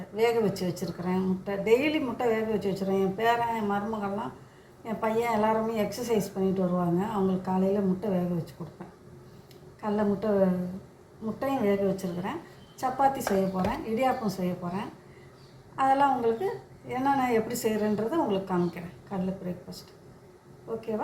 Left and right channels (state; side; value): identical; both; correlation 1.00